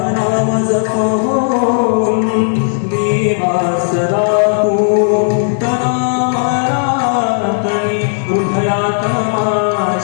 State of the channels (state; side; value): silent; right; 67 dB below the other